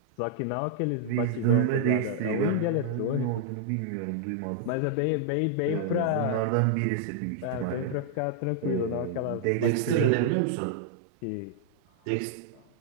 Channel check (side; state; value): both; different; correlation -0.01